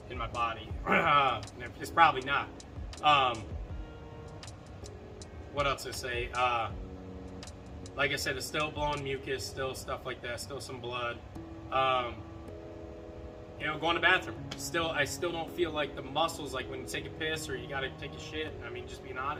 in my body. It's probably not. What else to say? Like I said, it's still blowing mucus, still stuff like that, still some blood. You know, going to the bathroom. I still don't feel like the muscles, like when you take a piss or you gotta take a shit. I mean, just being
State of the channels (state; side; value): identical; both; correlation 1.00